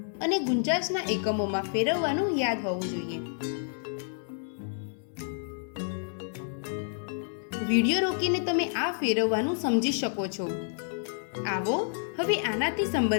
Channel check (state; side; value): silent; right; 58 dB below the other